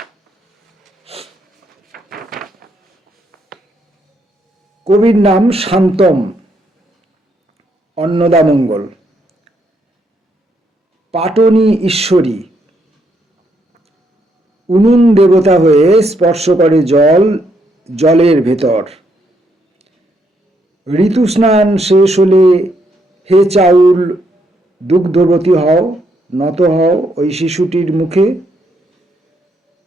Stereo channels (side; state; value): both; normal; correlation 0.75